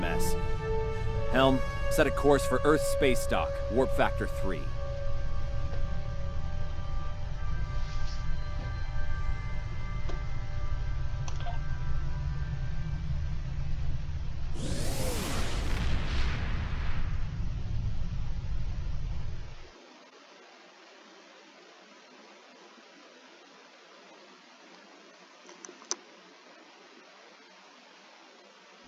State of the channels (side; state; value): both; identical; correlation 1.00